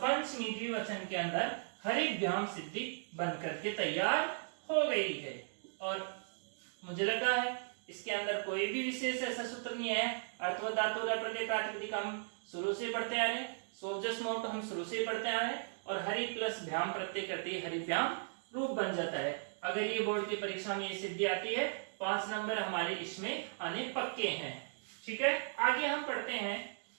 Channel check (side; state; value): left; silent; digital silence